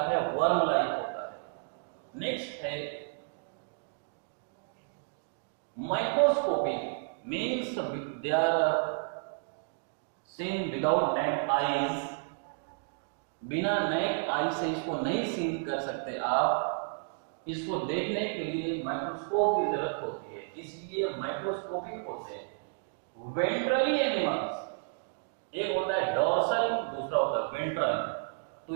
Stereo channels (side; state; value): left; silent; digital silence